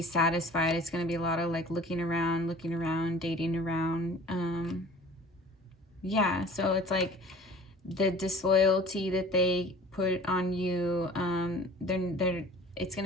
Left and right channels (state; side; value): normal; both; correlation 0.45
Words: satisfied. It's going to be a lot of like looking around, dating around. Yeah, so it's like the disloyalty that they put on you, it's going